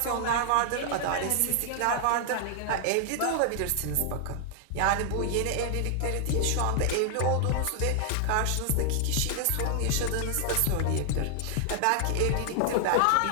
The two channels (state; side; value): different; both; correlation 0.00